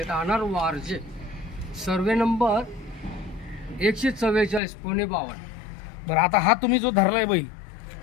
वारजे, सर्वे नंबर 144, पुणे 52. बरं, आता हा तुम्ही जो धरलाय बैल,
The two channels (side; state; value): right; drops out; at 4.6 s